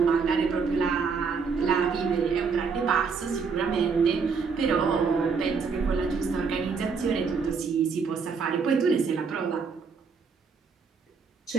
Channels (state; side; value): quieter; left; 5.3 dB